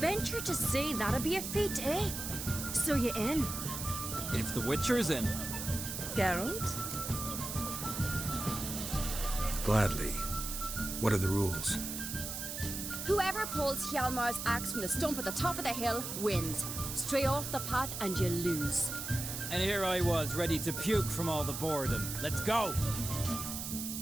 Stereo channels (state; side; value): noise; right; hiss, 5 dB below the sound